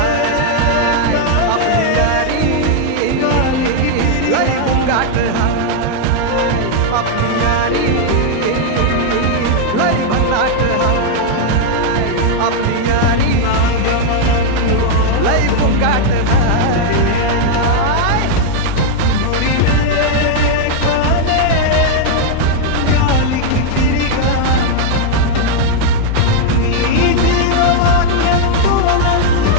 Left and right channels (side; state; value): both; different; correlation 0.00